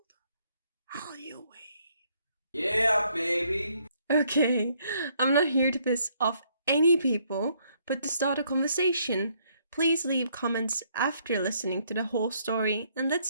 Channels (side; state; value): both; inverted; correlation -0.69